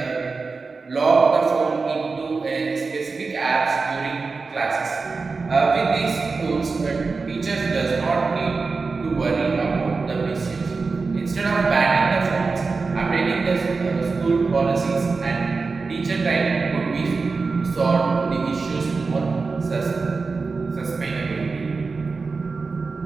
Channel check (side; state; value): left; quieter; 4.3 dB